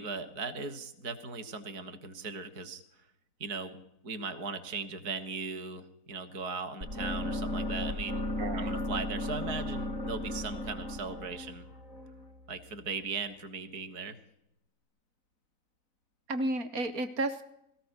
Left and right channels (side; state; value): left; late; 4.0 ms